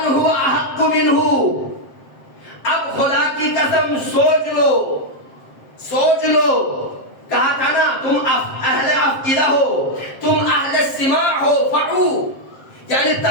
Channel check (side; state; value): right; late; 7.6 ms